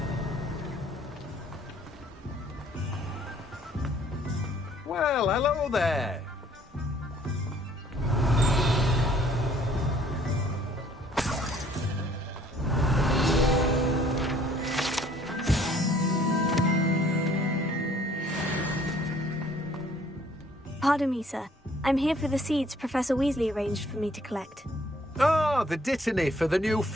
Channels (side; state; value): both; normal; correlation 0.59